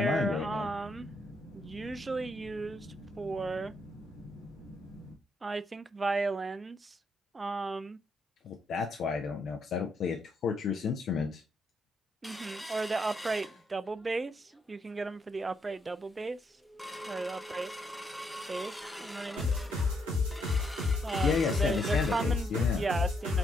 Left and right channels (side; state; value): both; normal; correlation 0.76